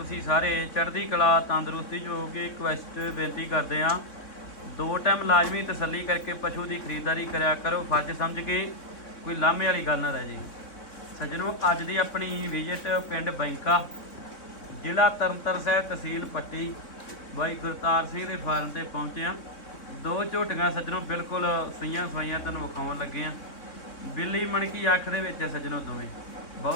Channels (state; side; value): late; right; 3.6 ms